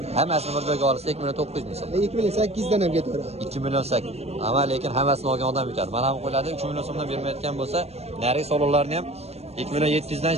Hammasini bir joyga olsa 2 million 900 ming so'm. 2 million 800 dan ham ketaveradi. 2 million 8. Ama lekin hammasini olgan odam yutadi. Mana ham qo'yiladi, 3 million so'mdan bermayotgan bo'lsa, narigi so'lovlarni ham 2 million 700 dan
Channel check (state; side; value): late; left; 0.30 ms